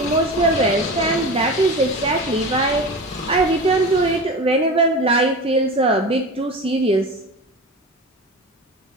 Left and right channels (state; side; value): normal; both; correlation 0.30